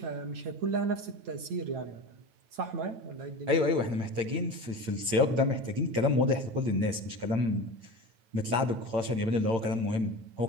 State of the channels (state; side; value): late; left; 8.8 ms